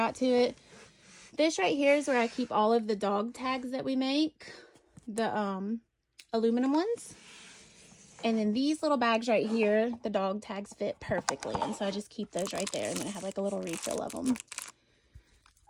to it. This right here is where I keep all of the dog tags that we make. The aluminum ones. And then these little bags right here, the dog tags fit perfectly. And so I just keep those right there. And then I have like a little refill of them.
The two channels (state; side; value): identical; both; correlation 1.00